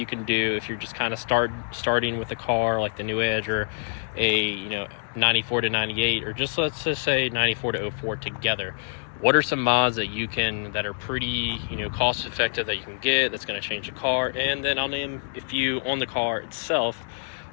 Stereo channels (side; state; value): right; silent; digital silence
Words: can do if you're just kind of starting with a car like the new Edge or a 94 to 98, or just let's just say 94 to 04 together. What are some mods that are pretty cost effective that you can get that's going to change the car? And then I'll name a few on the car itself,